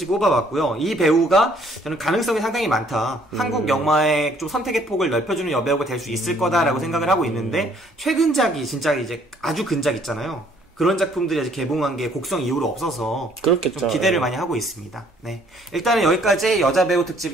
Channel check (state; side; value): normal; both; correlation 0.62